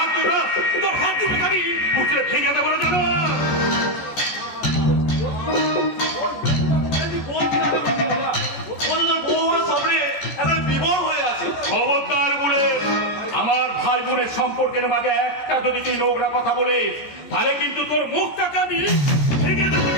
তুলে, তোর হাত তুলে আমি মুখে ভেঙে দেবো না জানো? খবরদার বলে আমার ভাই বোনের সম্পর্কের মাঝে একটা যদি তুই নোংরা কথা বলে তাহলে কিন্তু তোর মুখটাকে আমি ভেঙে দেবো।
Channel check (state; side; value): late; right; 14 ms